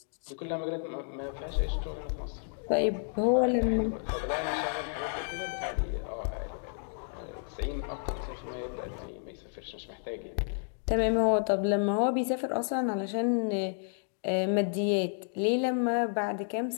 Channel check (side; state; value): right; silent; digital silence